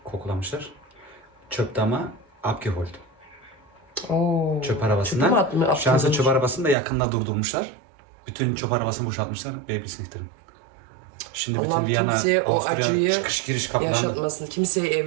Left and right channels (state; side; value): drops out; left; at 6.8 s